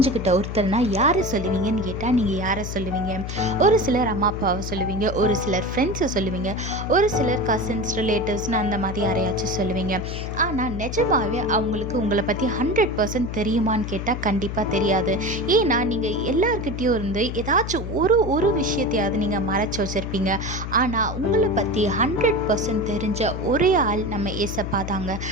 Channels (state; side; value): noise; left; hum, 6 dB below the sound